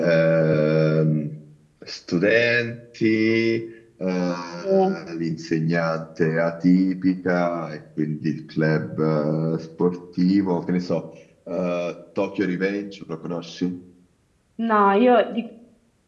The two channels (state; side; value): identical; both; correlation 1.00